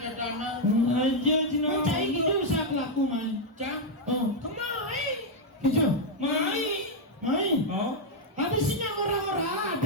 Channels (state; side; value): normal; both; correlation -0.01